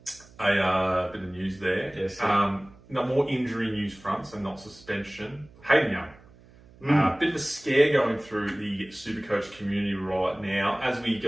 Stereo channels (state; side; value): noise; right; hum, 25 dB below the sound